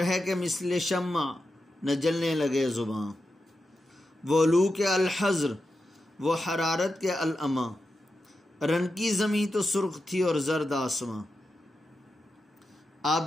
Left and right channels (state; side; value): normal; both; correlation 0.89